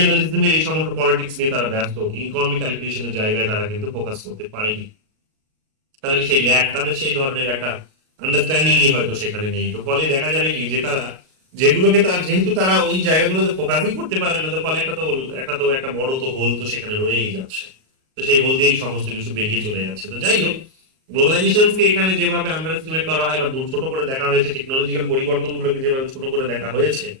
এই সমস্ত পলিটিক্স নিয়ে তারা ব্যস্ত, ইকোনমিক ক্যালকুলেশনের জায়গায় তারা কিন্তু ফোকাস করতে পারেনি। তাদের সেই ল্যাক, তাদের সেই ধরনের একটা আন্ডারস্ট্যান্ডিংই হয়তো সেখানে নেই। তো ফলে দেখা যাবে কি যে তারা যেগুলোকে তার যেহেতু তারা ওই জায়গাগুলোতে ফোকাসই করতে পারে না, তো ফলে একটা বড় তো হোল তো সেখানে রয়েই যাচ্ছে। তো সেই হোল দিয়েই সমস্ত কিছু বেরিয়ে চলে যাচ্ছে। তো যাই হোক, গ্লোবালাইজেশনকে এখানে যেভাবে আন্ডার এস্টিমেট করা হয় বা ছোট করে দেখা হয়েছে, টেকনোলজিক্যাল পরিবর্তনগুলোকে যেভাবে ছোট করে দেখা হয়েছে,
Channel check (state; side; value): late; left; 38 ms